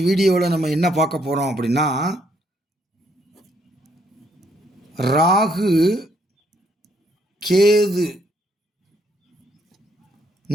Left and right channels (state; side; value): normal; both; correlation 0.71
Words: வீடியோவில் நம்ம என்ன பார்க்க போகிறோம் அப்படின்னா, ராகு கேது